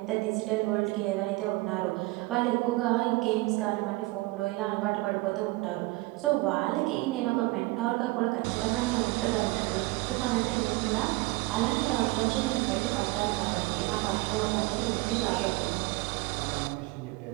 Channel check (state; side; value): quieter; left; 22.0 dB